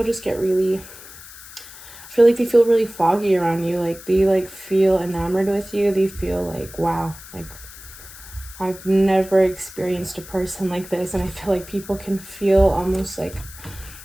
just get really, I feel like they feel really foggy around you. Like, they like feel enamored with you. They feel like, wow, like, I've never experienced a person like this. And I feel like people can feel almost like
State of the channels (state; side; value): noise; left; hiss, 17 dB below the sound